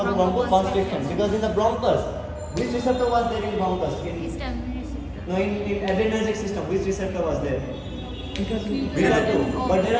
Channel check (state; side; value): identical; both; correlation 1.00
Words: because in the bronchus, which receptor was there in bronchus? Histamine receptor. No, in adrenergic system, which receptor was there? Beta 2. But there